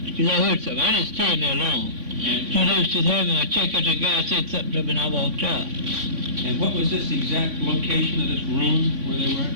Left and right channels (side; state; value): left; late; 3.5 ms